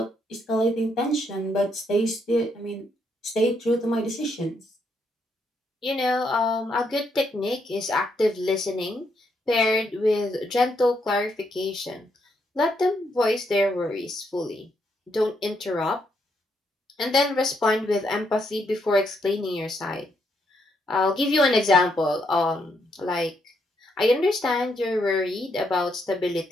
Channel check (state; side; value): normal; both; correlation 0.76